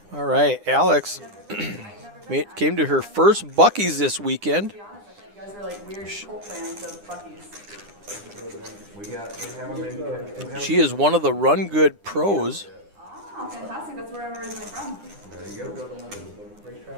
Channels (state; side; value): late; left; 9.9 ms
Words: All right, Alex came to her first Buc-ee's this weekend. To be honest, I thought you guys were like weird cult fans of Buc-ee's. She is one of the RunGood pros. Oh, fantastic. That's where I'm originally from. There you go.